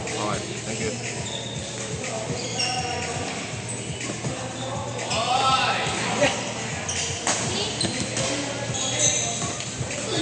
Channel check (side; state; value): both; identical; correlation 1.00